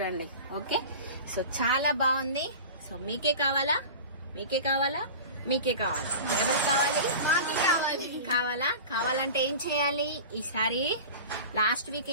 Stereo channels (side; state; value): both; inverted; correlation -0.34